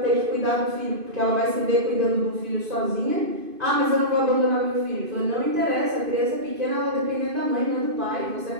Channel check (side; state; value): left; late; 2.5 ms